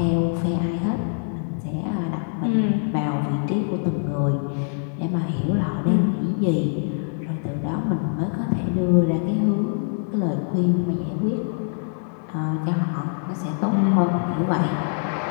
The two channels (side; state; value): right; silent; digital silence